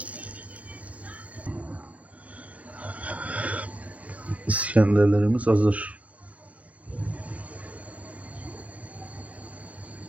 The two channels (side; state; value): left; late; 0.066 ms